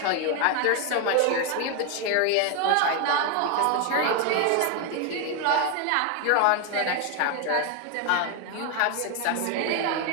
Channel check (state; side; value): different; both; correlation 0.01